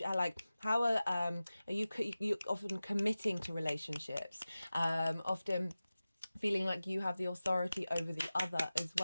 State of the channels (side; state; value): both; inverted; correlation -0.96